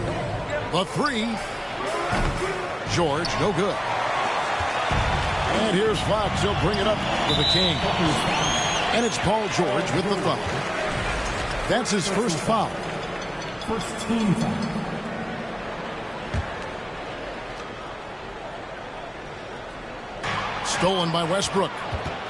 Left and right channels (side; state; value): both; identical; correlation 1.00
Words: The three. George, no good. And here's Fox. He'll bring it up for the King. And it's Paul George with the foul. That's his first foul. First team foul. Stolen by Westbrook.